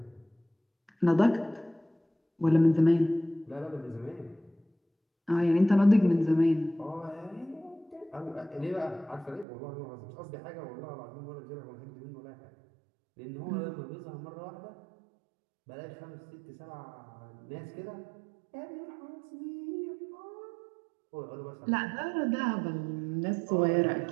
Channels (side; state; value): left; drops out; at 9.5 s